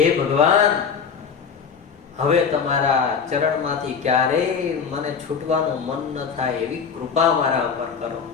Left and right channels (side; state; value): right; quieter; 6.3 dB